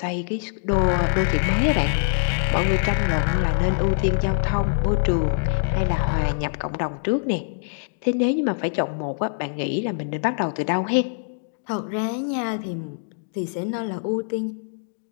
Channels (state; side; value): silent; right; digital silence